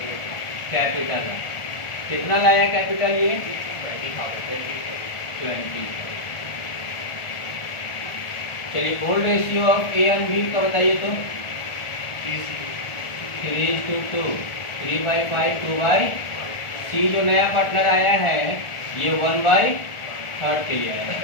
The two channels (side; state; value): right; late; 1.4 ms